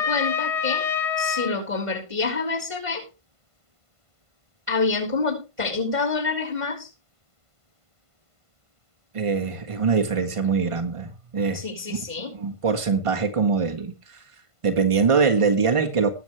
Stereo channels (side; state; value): left; late; 1.5 ms